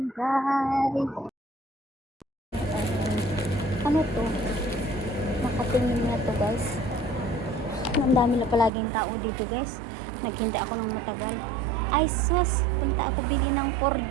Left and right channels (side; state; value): left; drops out; at 8.7 s